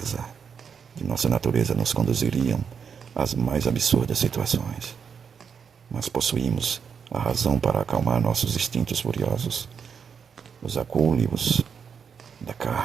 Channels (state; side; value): quieter; left; 6.7 dB